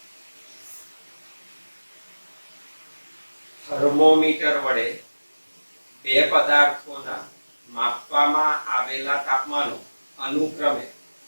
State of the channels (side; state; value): both; inverted; correlation -1.00